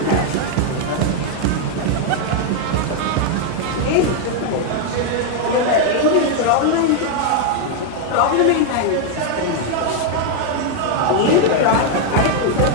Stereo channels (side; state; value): both; different; correlation 0.00